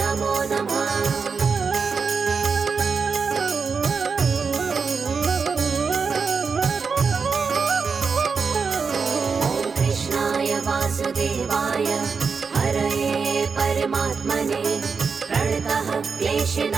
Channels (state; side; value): quieter; left; 5.3 dB